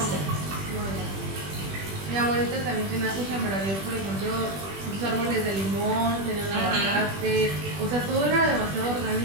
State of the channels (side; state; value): left; late; 20 ms